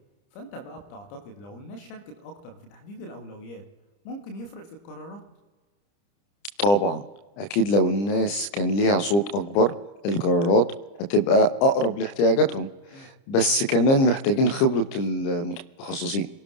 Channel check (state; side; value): late; right; 30 ms